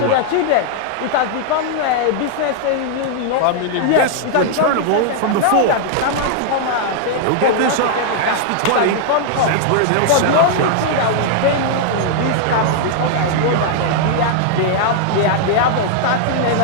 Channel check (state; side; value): different; both; correlation -0.01